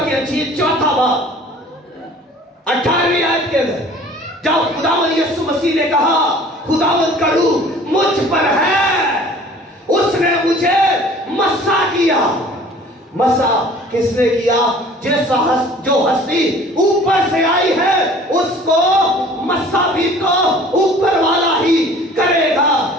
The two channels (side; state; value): both; normal; correlation 0.49